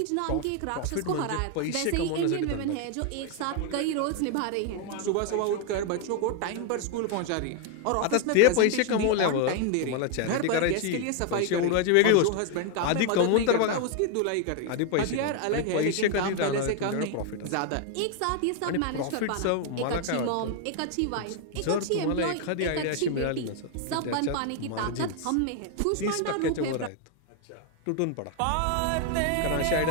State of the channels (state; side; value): different; both; correlation 0.01